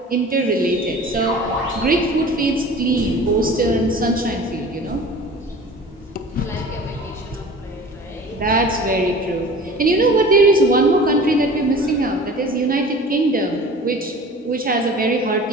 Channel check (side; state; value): both; normal; correlation 0.42